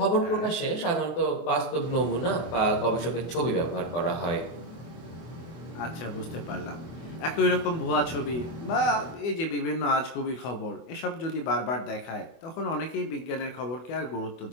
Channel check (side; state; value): right; late; 24 ms